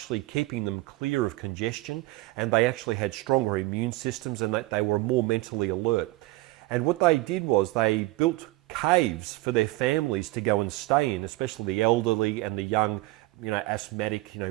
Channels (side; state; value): left; quieter; 20.2 dB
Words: keeping them clear of congestion, and they actually had stronger immune systems and that they were more mentally alert. And what they did was they built caves for their families to go and stay in, especially the elderly and the young, asthmatic,